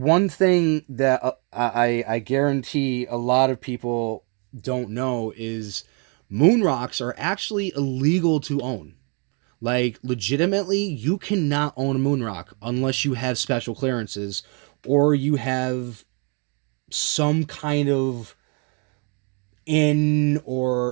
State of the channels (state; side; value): quieter; left; 36.0 dB